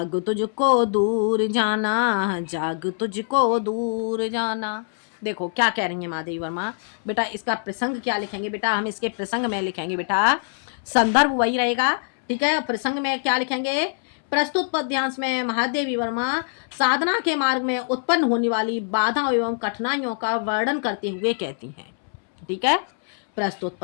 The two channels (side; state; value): right; silent; 63 dB below the other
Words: तुझको दूर जाना, जाग तुझको दूर जाना। देखो क्या कह रही है महादेवी वर्मा बेटा, इसका प्रसंग क्या लिखेंगे बेटा? हम इसके प्रसंग में लिखेंगे बेटा, संदर्भ वही रहेगा। ठीक है, प्रसंग में क्या लिखेंगे? प्रस्तुत पद्यांश में महादेवी वर्मा साधना के मार्ग में उत्पन्न होने वाली बाधाओं एवं कठिनाइयों का वर्णन करते हुए कहती हैं। ठीक है, प्रस्तुत